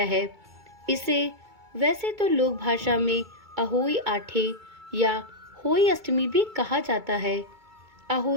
है। इसे वैसे तो लोक भाषा में अहोई आठे या होई अष्टमी भी कहा जाता है।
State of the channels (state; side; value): late; left; 2.3 ms